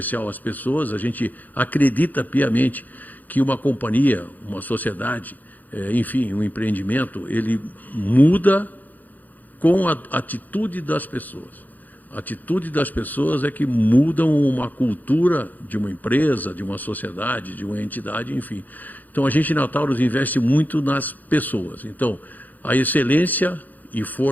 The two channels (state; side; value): late; right; 0.082 ms